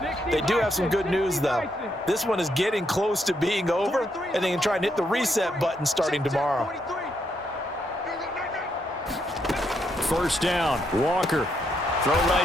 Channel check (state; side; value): normal; both; correlation 0.77